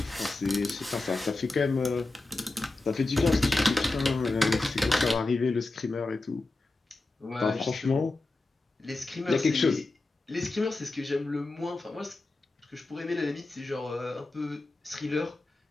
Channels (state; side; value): quieter; right; 3.1 dB